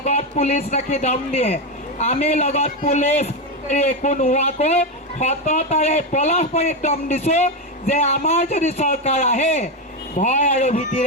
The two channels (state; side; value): normal; both; correlation 0.10